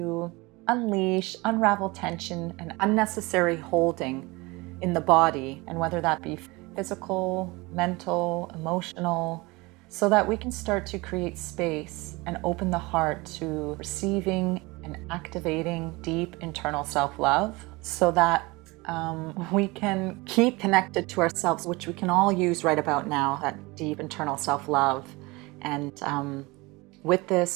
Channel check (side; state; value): left; quieter; 23.8 dB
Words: unleash, unravel tension and unnecessary holding in the body, and whether that be physical, mental, emotional, so that we can start to create space and open the heart to receiving and activating deep internal self-love so that we can keep connected to ourselves, which we can all use right about now, that deep internal self-love. And with